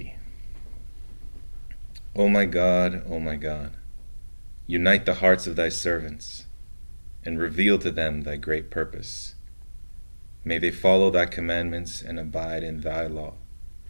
O my God, unite the hearts of thy servants and reveal to them thy great purpose. May they follow thy commandments and abide in thy law.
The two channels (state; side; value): inverted; both; correlation -1.00